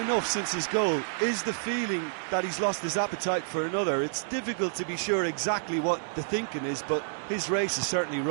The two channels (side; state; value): left; silent; digital silence